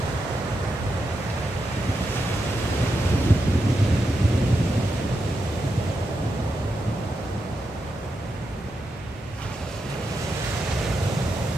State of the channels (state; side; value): normal; both; correlation 0.86